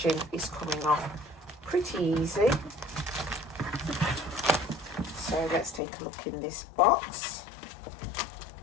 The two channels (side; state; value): right; drops out; at 5.8 s